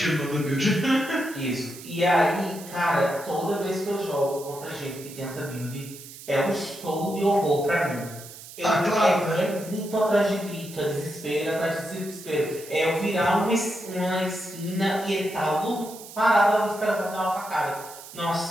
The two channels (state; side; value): noise; right; hiss, 15 dB below the sound